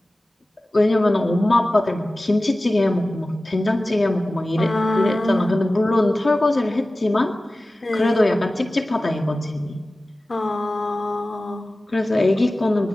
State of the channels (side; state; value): both; normal; correlation 0.97